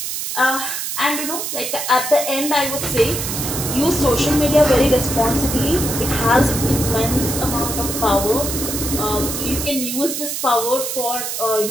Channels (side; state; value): right; noise; hiss, 4 dB below the sound